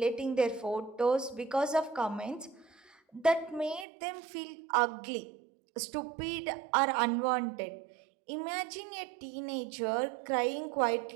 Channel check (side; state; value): left; drops out; at 3.9 s